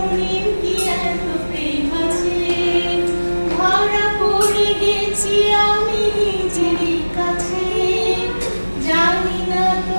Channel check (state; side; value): inverted; both; correlation -1.00